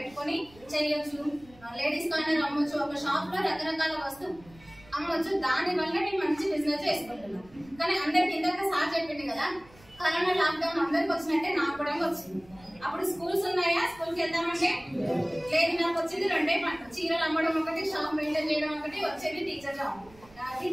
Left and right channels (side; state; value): right; noise; rumble, 25 dB below the sound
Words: చేయొచ్చు, లేడీస్ కార్నర్ అమ్మొచ్చు, ఒక షాప్ లో రకరకాల వస్తువు అమ్మొచ్చు. దాని వల్ల నేను మంచి బిజినెస్ చేసుకుంటున్నాను. కానీ అందరికి ఇందాక సార్ చెప్పింది కదా, కరోనా లాక్డౌన్ అందరికి వచ్చినట్టే నాకు కూడా వచ్చింది. అప్పుడు స్కూల్స్ ఉన్నాయా, స్కూల్ కి వెళ్దామంటే లేదు. నాకు వచ్చింది రెండే పనులు, చీరలు అమ్మడం ఒకటి, షాప్ మెయింటైన్ చేయడం ఒకటి, వచ్చేది టీచర్ జాబ్.